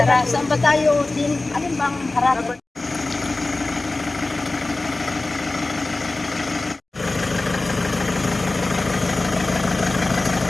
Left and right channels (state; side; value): quieter; right; 3.1 dB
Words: Saan ba tayo? Alin bang harap?